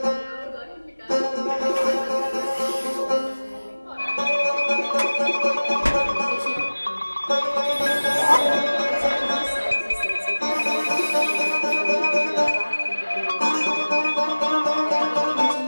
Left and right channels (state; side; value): inverted; both; correlation -1.00